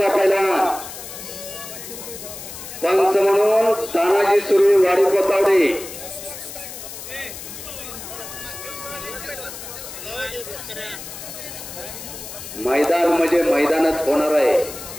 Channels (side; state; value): left; noise; hiss, 11 dB below the sound